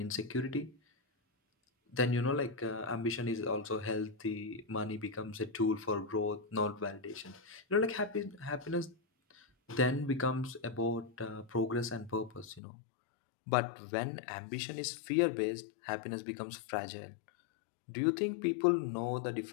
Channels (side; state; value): right; drops out; at 12.6 s